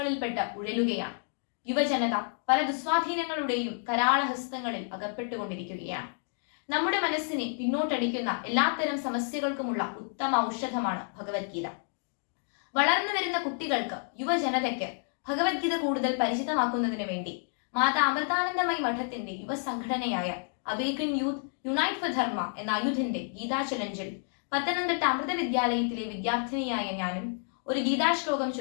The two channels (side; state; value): right; silent; 58 dB below the other